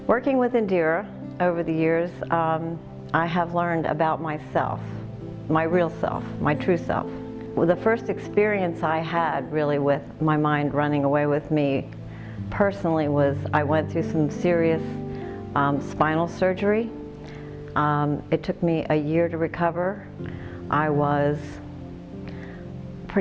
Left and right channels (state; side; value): identical; both; correlation 1.00